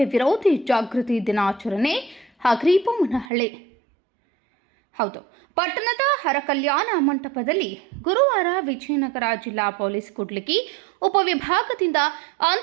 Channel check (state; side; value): drops out; left; at 3.3 s